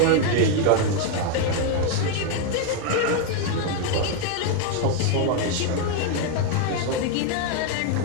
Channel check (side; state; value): both; different; correlation 0.01